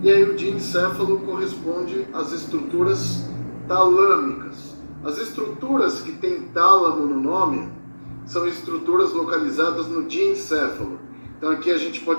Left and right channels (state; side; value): inverted; both; correlation -1.00